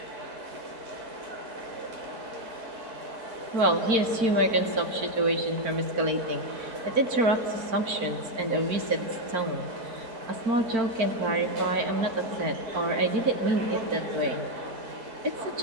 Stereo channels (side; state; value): left; late; 4.4 ms